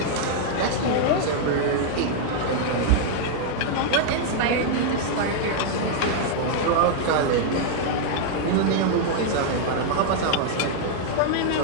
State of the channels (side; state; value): both; different; correlation -0.01